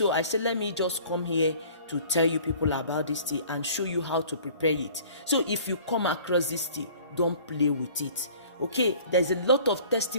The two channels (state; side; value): inverted; both; correlation -0.49